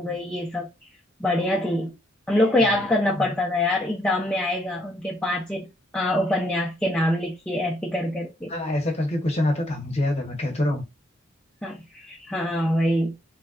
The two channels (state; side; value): normal; both; correlation 0.72